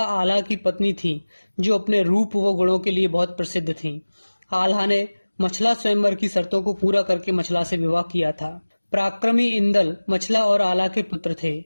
आल्हा की पत्नी थी, जो अपने रूप व गुणों के लिए बहुत प्रसिद्ध थी। आल्हा ने मछला स्वयंवर की शर्तों को पूरा करके मछला से विवाह किया था। पराक्रमी इंदल मछला और आल्हा के पुत्र थे।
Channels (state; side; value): inverted; both; correlation -1.00